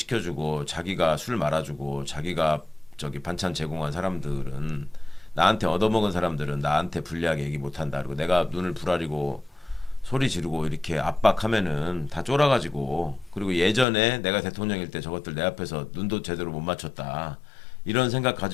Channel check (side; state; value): right; drops out; at 13.9 s